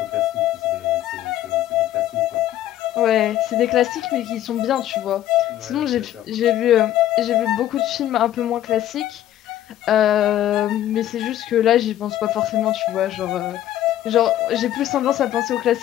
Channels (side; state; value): right; quieter; 12.6 dB